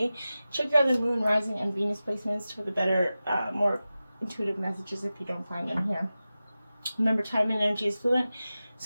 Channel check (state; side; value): inverted; both; correlation -0.95